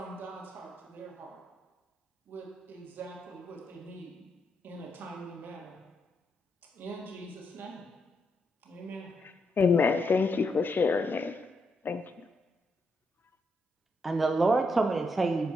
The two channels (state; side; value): normal; both; correlation 0.80